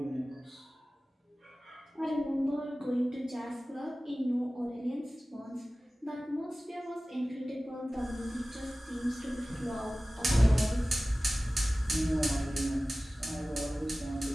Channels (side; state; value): both; normal; correlation 0.97